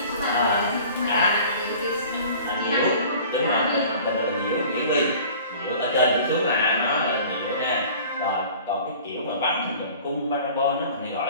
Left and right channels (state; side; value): inverted; both; correlation -0.45